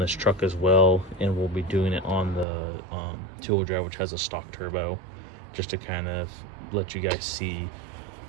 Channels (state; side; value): drops out; left; at 2.5 s